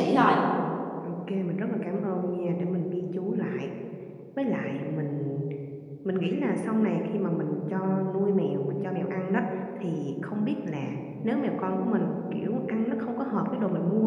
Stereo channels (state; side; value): identical; both; correlation 1.00